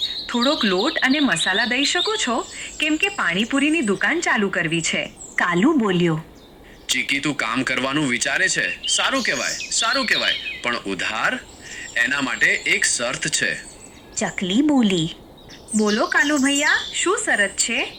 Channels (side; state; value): both; identical; correlation 1.00